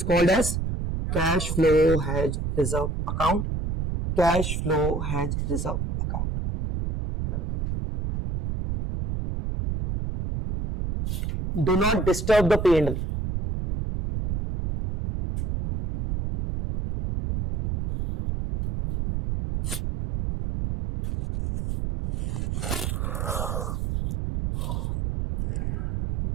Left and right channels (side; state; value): right; noise; rumble, 2 dB below the sound